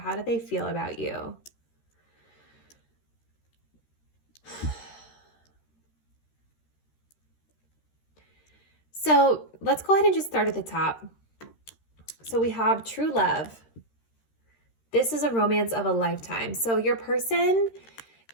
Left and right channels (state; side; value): late; right; 13 ms